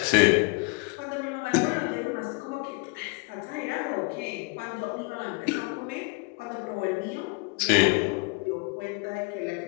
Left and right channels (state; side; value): quieter; right; 31.2 dB